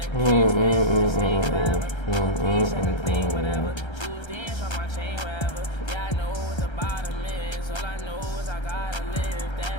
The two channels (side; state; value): right; late; 1.3 ms